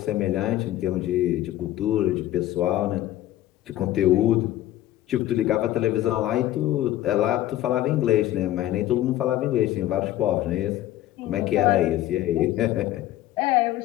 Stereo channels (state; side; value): quieter; right; 14.1 dB